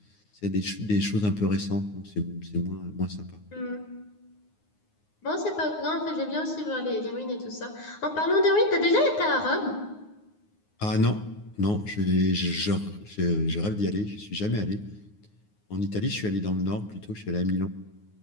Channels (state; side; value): late; right; 9.6 ms